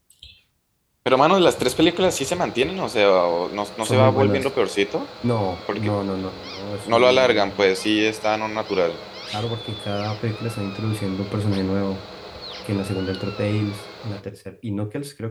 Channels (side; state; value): both; identical; correlation 1.00